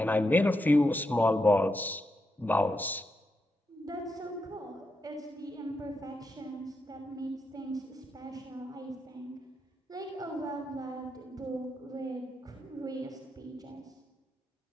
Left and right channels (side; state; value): both; normal; correlation 0.84